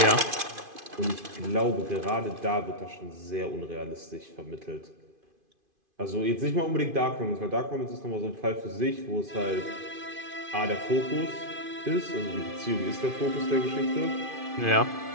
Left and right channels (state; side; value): late; left; 2.5 ms